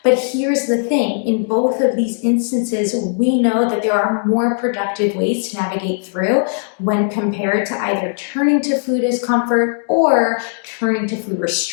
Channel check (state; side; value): silent; right; digital silence